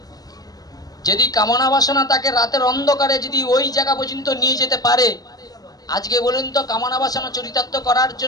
যদি কামনা বাসনা তাকে রাতের অন্ধকারে যদি ওই জায়গা পর্যন্ত নিয়ে যেতে পারে, আজকে বলুন তো কামনা বাসনা চরিতার্থ করার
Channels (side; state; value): right; late; 0.18 ms